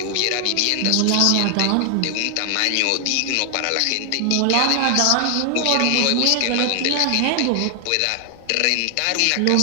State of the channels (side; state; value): both; different; correlation 0.00